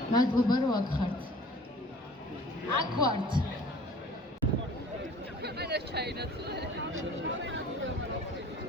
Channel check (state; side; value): normal; both; correlation 0.48